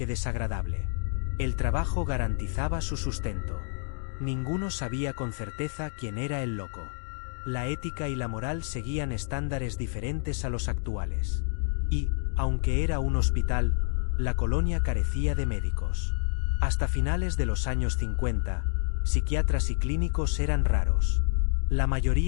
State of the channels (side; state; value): right; silent; digital silence